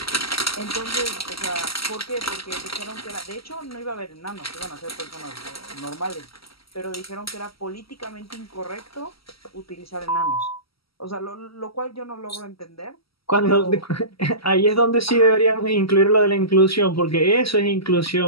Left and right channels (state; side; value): late; right; 0.75 ms